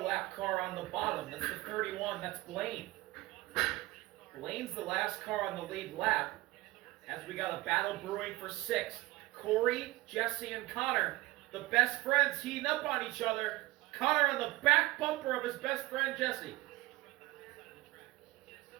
car on the bottom. That's the 31. That's Blaine. Blaine's the last car on the lead lap. As we got a battle brewing for 6th. Corey, Jesse, and Connor, the best friends, heating up on each other. Connor on the back bumper of his best friend, Jesse.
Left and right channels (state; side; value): quieter; left; 19.9 dB